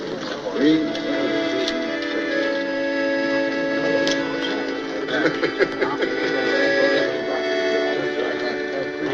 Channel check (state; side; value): identical; both; correlation 1.00